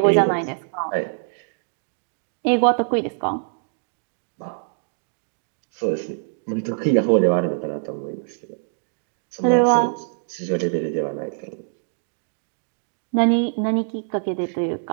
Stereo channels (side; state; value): left; silent; digital silence